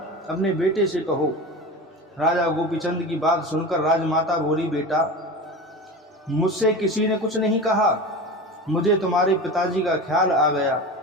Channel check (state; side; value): normal; both; correlation 0.29